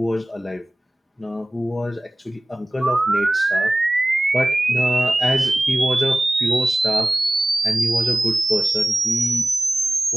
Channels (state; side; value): normal; both; correlation 0.97